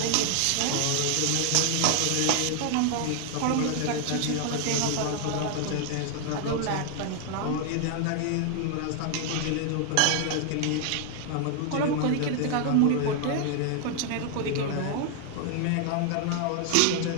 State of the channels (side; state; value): both; different; correlation 0.00